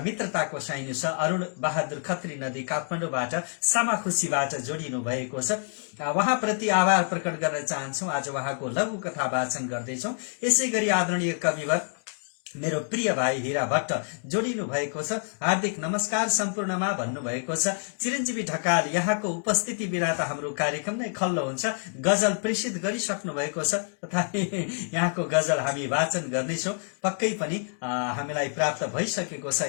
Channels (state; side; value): silent; right; 60 dB below the other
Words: मित्रताको साइनो छ। अरुण बहादुर खत्री नदी काठमाडौँबाट सामाखुसीबाट जोडिनु भएको छ। उहाँप्रति आभार प्रकट गर्न चाहन्छौ। आज उहाँको लघु कथा वाचन गर्दैछौ। यसैगरी आदरणीय कविवर मेरो प्रिय भाइ हीरा भट्ट जोडिनु भएको छ। हार्दिक नमस्कार सम्पूर्णमा भन्नुभएको छ। चिरञ्जीवी ढकाल, यहाँको उपस्थिति बिना त हाम्रो कार्यक्रम नै खल्लो हुन्छ। गजल प्रेषित गरिसक्नु भएको छ, तथापि यहाँको गजल हामी वाचन गर्नेछौं। पक्कै पनि हामीलाई प्राप्त भइसकेको